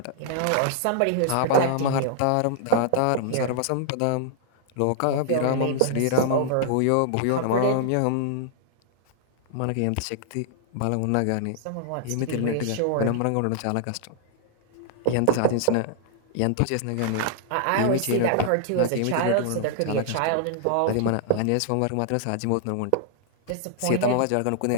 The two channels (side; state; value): both; different; correlation -0.01